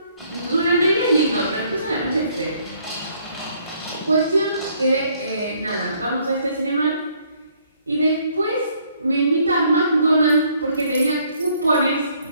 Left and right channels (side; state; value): both; inverted; correlation -0.65